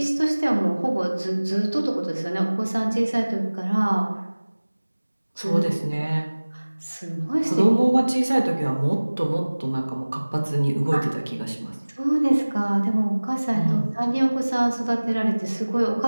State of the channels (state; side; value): inverted; both; correlation -1.00